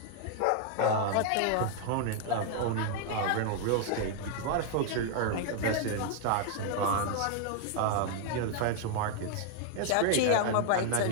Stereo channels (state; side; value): different; both; correlation 0.00